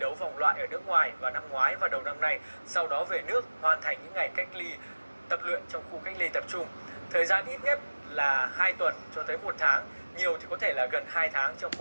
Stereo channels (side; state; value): both; inverted; correlation -1.00